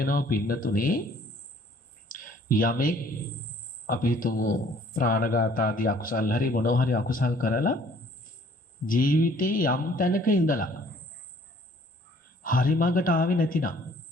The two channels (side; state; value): both; normal; correlation 0.57